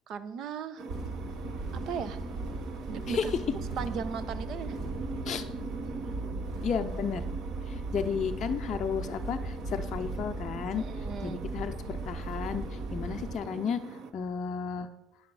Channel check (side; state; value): both; normal; correlation 0.64